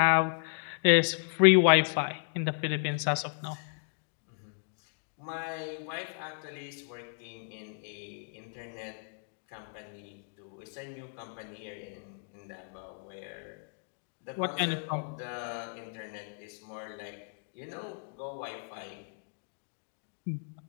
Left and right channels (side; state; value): right; silent; digital silence